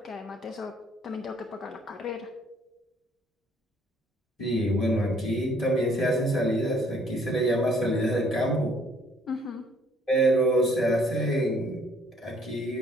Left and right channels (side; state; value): both; normal; correlation 0.62